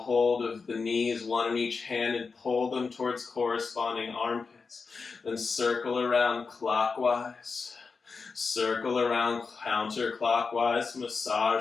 of the knees, 1 in each hand, and pull them towards corresponding armpits. Then circle around clockwise. Circle around counterclockwise,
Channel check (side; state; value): right; quieter; 4.8 dB